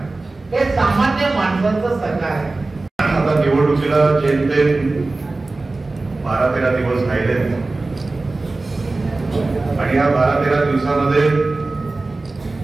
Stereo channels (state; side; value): quieter; left; 3.3 dB